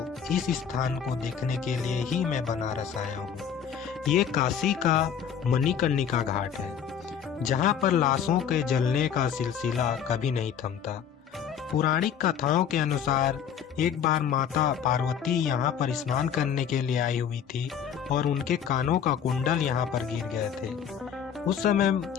इस स्थान को देखने के लिए ही मैं बनारस आया हूँ। ये काशी का मणिकर्णिका घाट है, जहाँ पर लाशों के जलने का सिलसिला कभी नहीं थमता। पौराणिक कथाओं के अनुसार एक बार माता पार्वती यहाँ पर स्नान करने के लिए आई हुई थी और उनके कानों का कुंडल यहाँ पर गिर गए थे। उस समय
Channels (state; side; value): quieter; right; 8.1 dB